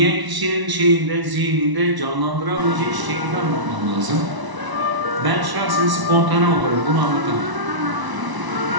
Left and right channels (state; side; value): late; left; 1.0 ms